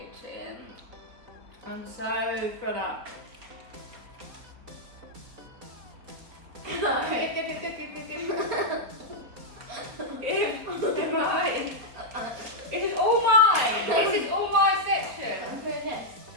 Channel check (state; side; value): late; left; 4.2 ms